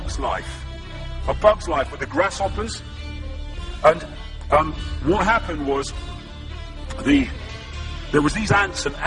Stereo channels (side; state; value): both; identical; correlation 1.00